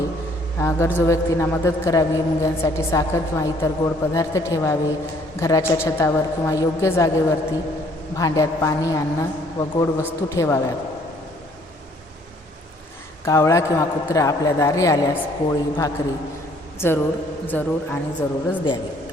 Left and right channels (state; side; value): normal; both; correlation 0.61